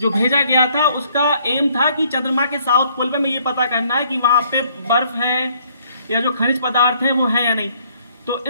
भेजा गया था उसका एम था कि चंद्रमा के साउथ पोल पे में ये पता करना है कि वहां पे बर्फ है या जो खनिज पदार्थ है वो है या नहीं। तो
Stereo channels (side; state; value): both; inverted; correlation -0.65